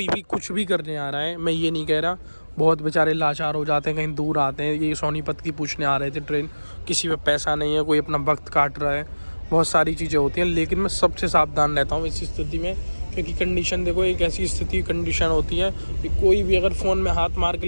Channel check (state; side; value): inverted; both; correlation -1.00